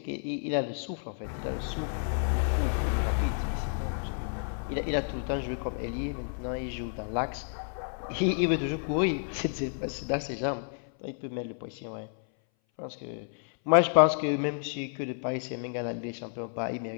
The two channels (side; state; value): right; silent; 57 dB below the other